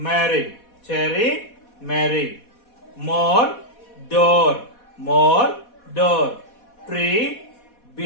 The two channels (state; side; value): late; right; 4.1 ms